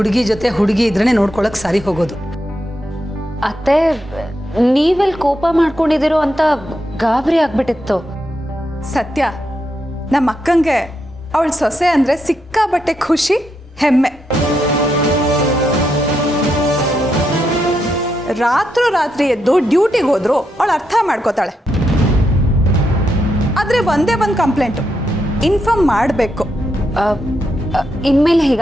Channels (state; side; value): normal; both; correlation 0.82